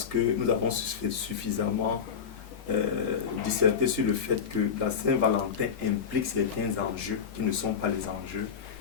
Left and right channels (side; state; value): right; quieter; 6.8 dB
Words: que nous avons suffisamment disserté sur le fait que la Saint-Valentin implique certains enjeux qui ne sont pas les enjeux,